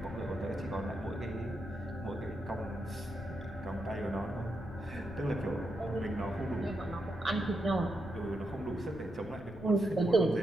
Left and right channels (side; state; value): left; noise; rumble, 15 dB below the sound